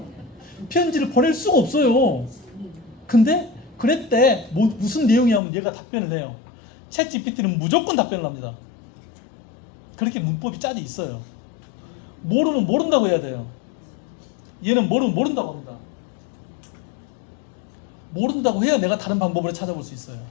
편지를 보낼 수가 없어요. 근데 그랬대. 무슨 내용이냐면 얘가 답변을 해요. 챗 GPT는 무조건 답변을 합니다. 그렇게 문법이 짜져 있어요. 모르면 모른다고 해야 돼요. 얘는 모르면 모른다고 합니다. 모른다고 해야 내가 다른 방법으로 찾아볼 수 있어요.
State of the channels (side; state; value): right; drops out; at 5.4 s